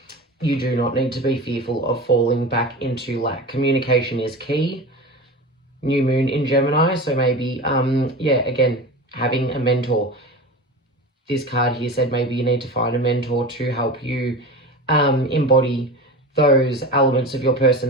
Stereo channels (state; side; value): normal; both; correlation 0.30